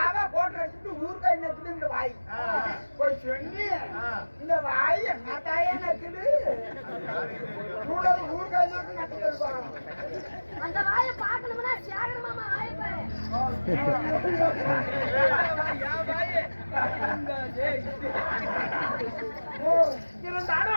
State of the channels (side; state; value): both; inverted; correlation -1.00